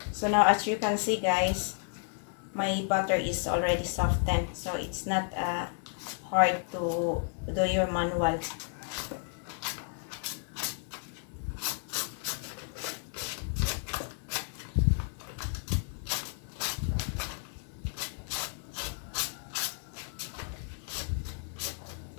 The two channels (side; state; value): right; silent; 56 dB below the other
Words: So now, as you can see guys, my butter is already softened, so it's not hard to do your manual.